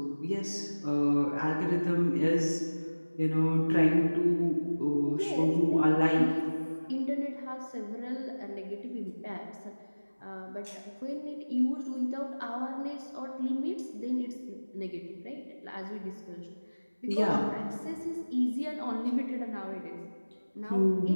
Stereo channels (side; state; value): both; inverted; correlation -1.00